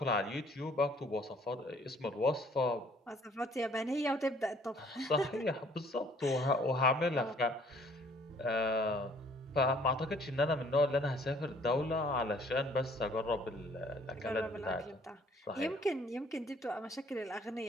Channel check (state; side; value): normal; both; correlation 0.59